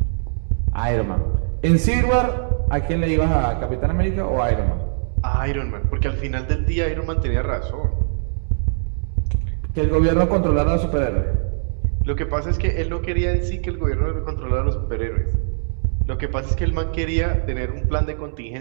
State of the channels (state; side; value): silent; left; 65 dB below the other